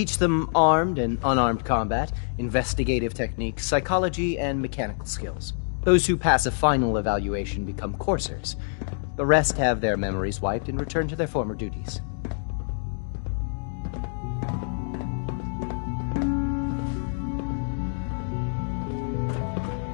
them armed and unarmed combat, investigative techniques, psychology, and mechanical skills. Those who pass a final evaluation become coursers. The rest have their memories wiped and return to their former duties.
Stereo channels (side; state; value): right; silent; digital silence